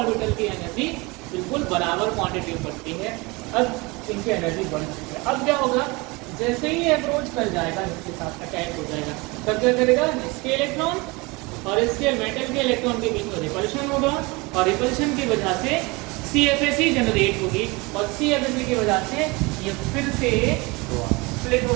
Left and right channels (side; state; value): left; quieter; 25.4 dB